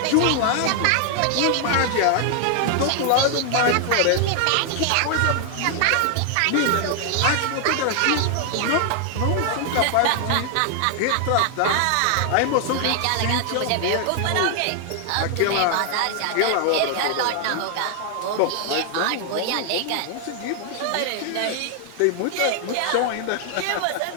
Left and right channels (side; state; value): both; different; correlation 0.00